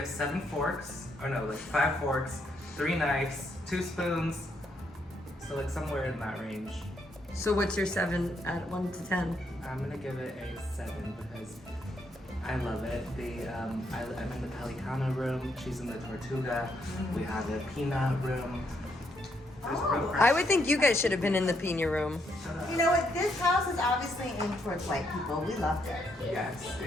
7 forks, or no, like 5 forks, 3 knives, 2 spoons. So like somewhere in that range. So what's your 7 at 1 to 10? I'm gonna give it a 7 because I love it. I'm in the Pelicano room. She's in the Tortuga. We have a peanut room. I would think you guys should have been in the Pina room. You know what? This house is obviously aimed towards white people. We loved it. Yes,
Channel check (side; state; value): both; normal; correlation 0.75